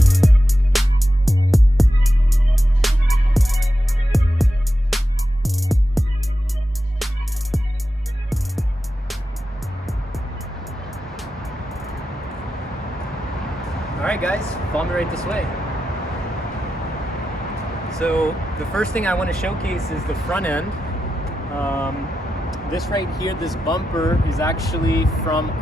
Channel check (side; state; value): both; normal; correlation 0.89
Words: Alright guys, follow me right this way. So the first thing I want to showcase is the front end. This right here, this bumper is actually from